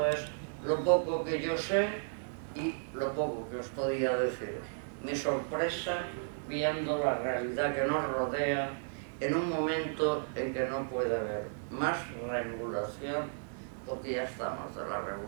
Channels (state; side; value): silent; left; digital silence